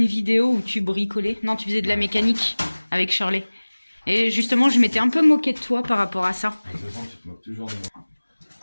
vidéo où tu bricolais. Non, tu faisais de la mécanique avec Shirley. Et justement, je m'étais un peu moquée de toi par rapport à ça. De toute façon, tu te moques toujours de moi.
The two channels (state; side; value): inverted; both; correlation -1.00